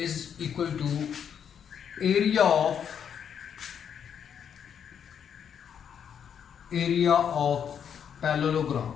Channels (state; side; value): quieter; right; 8.1 dB